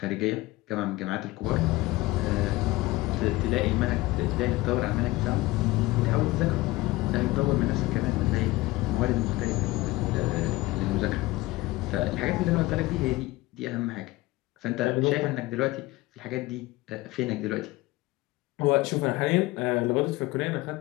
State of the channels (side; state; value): right; quieter; 19.7 dB